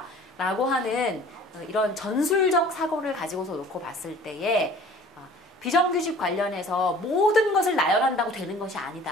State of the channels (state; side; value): normal; both; correlation 0.48